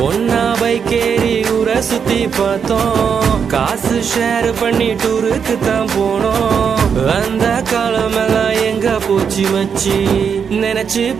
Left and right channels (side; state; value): left; quieter; 6.8 dB